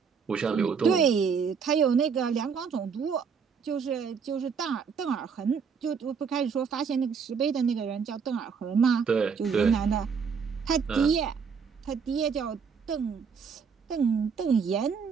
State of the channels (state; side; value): quieter; left; 6.1 dB